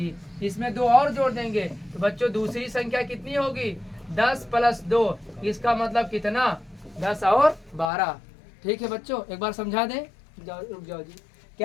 इसमें 2 और जोड़ देंगे तो बच्चों दूसरी संख्या कितनी होगी? 10 प्लस 2, इसका मतलब कितना? 10 और 12। ठीक है बच्चों, एक बार समझा दें। रुक जाओ जी,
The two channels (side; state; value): right; drops out; at 7.9 s